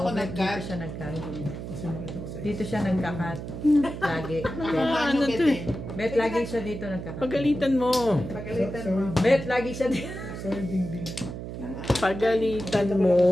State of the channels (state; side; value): noise; right; hum, 8 dB below the sound